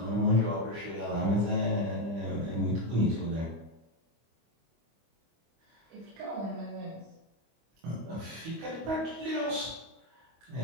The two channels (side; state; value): left; late; 25 ms